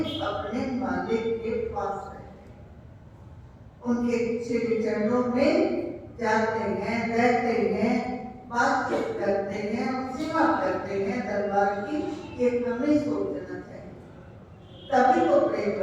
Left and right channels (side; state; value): both; identical; correlation 1.00